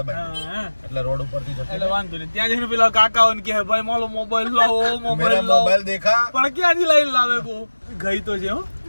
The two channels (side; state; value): both; inverted; correlation -1.00